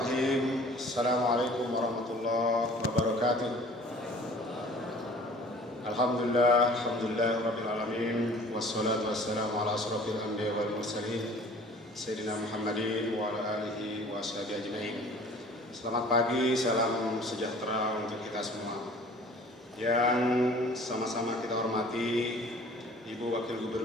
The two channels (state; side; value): normal; both; correlation 0.49